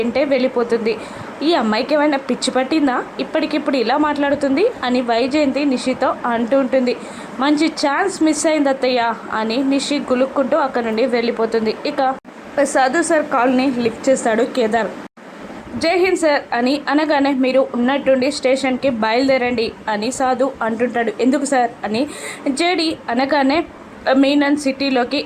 వెళ్ళిపోతుంది. ఈ అమ్మాయికి ఏమైనా పిచ్చి పట్టిందా, ఇప్పటికిప్పుడు ఇలా మాట్లాడుతుంది అని వైజయంతి నిషితో అంటూ ఉంటుంది. మంచి ఛాన్స్ మిస్ అయింది అత్తయ్య అని నిషి గులుక్కుంటూ అక్కడ నుండి వెళ్ళిపోతుంది. ఇక సాధు సార్ కాల్ని లిఫ్ట్ చేస్తాడు కేదార్. జై హింద్ సార్ అని అనగానే, మీరు ఉన్నట్టుండి స్టేషన్కి బయలుదేరండి అని సాధు అంటుంటాడు. ఎందుకు సార్ అని జేడి అనగానే, మీనన్ సిటీలోకి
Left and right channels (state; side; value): identical; both; correlation 1.00